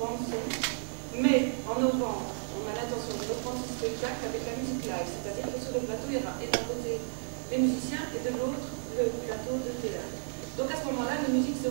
bande son, mais en novembre, on a l'intention de reprendre ce spectacle avec la musique live, c'est-à-dire que sur le plateau, il y aura et d'un côté les musiciens et de l'autre le plateau de théâtre. Donc à ce moment-là, les musiques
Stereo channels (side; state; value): left; silent; 56 dB below the other